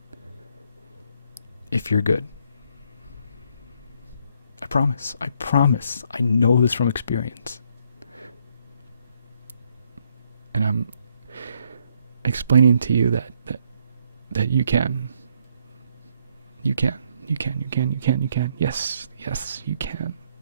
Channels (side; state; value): both; inverted; correlation -0.71